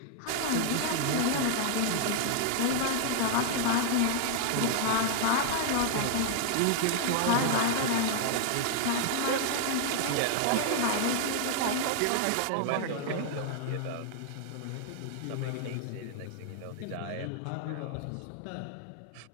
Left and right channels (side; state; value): both; different; correlation -0.01